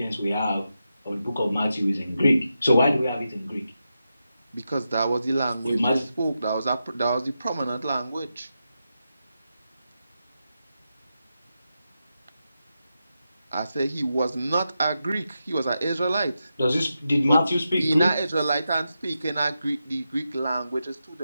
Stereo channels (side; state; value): both; inverted; correlation -0.88